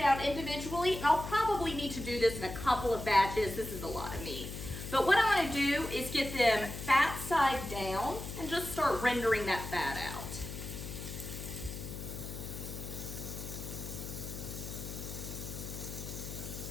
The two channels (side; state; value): left; noise; hum, 8 dB below the sound